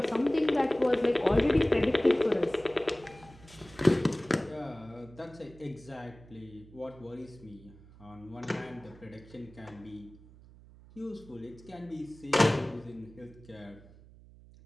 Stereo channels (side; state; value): right; noise; hum, 22 dB below the sound